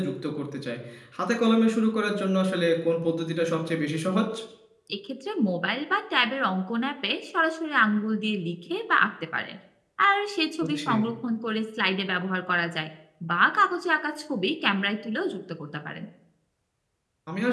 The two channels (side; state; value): both; identical; correlation 1.00